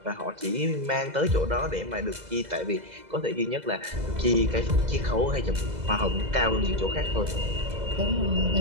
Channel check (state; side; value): late; left; 2.0 ms